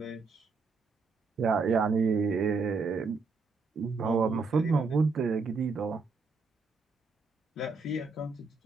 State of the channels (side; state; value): left; quieter; 4.4 dB